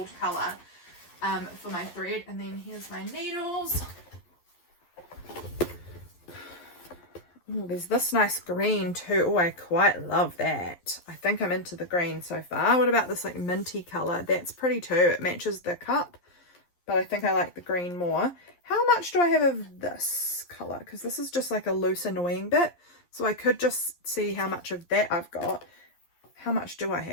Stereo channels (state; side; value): late; right; 11 ms